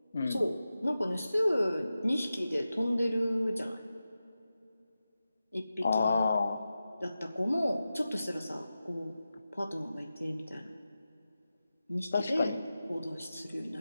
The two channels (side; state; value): both; inverted; correlation -0.93